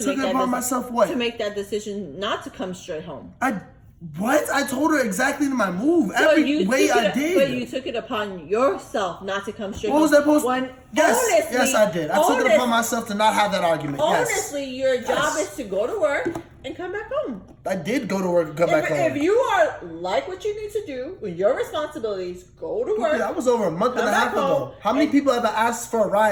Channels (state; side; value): identical; both; correlation 1.00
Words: Took make it that upon myself what? to make that decision not to come straight home. What? I told her exactly my move. So Every way I did. But you took it upon yourself not to come straight What home. was that supposed to? Yes, honestly, yes, I did. I took it upon myself to not have that argument. Honestly, Yes. your job is to go to work and come back home. I did go to work and come back home. If you are like what you need to do with your responsibilities, go to work. That was over a month and a half ago. How many people have I asked for a